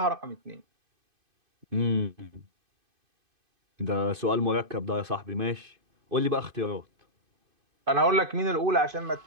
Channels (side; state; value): left; late; 2.5 ms